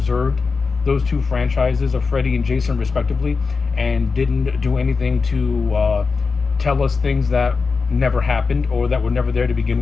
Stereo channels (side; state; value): right; quieter; 4.7 dB